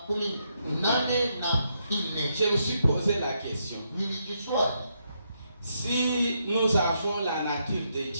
Je me suis posé la question. Nilijiswali. Si nous avons la nature de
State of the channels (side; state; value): both; inverted; correlation -0.79